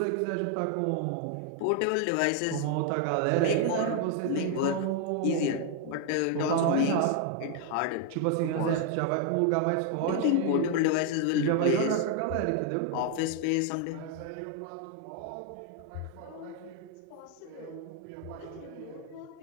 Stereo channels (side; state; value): both; different; correlation 0.01